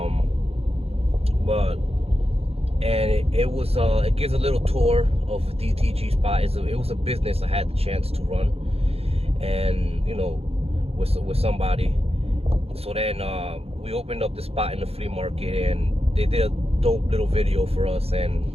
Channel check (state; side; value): late; left; 0.29 ms